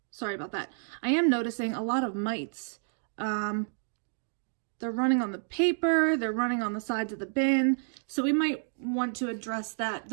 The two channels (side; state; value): left; silent; digital silence